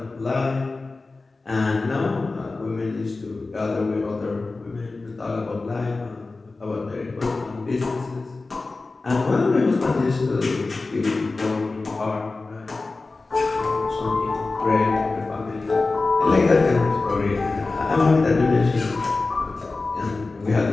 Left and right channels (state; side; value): quieter; right; 3.6 dB